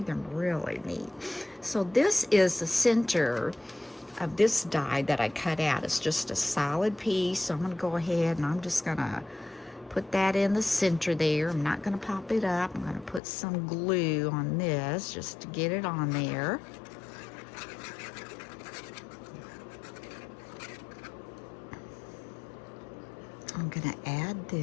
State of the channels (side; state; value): right; drops out; at 13.2 s